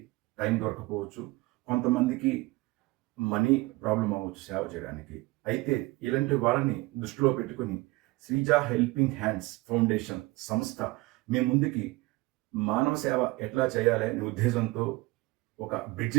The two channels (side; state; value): left; quieter; 21.9 dB